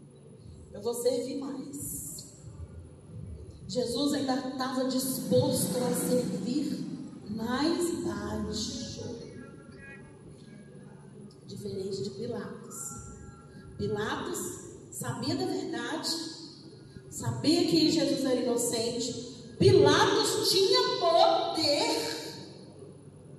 Eu vou servir mais. Jesus ainda estava disposto a servir mais baixo. Diferente de Pilatos. Pilatos sabia da verdade, sabia que Jesus era inocente. Pilatos tinha poder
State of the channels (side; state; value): both; identical; correlation 1.00